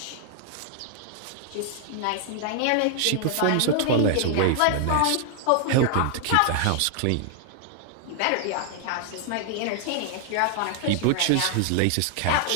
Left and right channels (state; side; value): different; both; correlation 0.00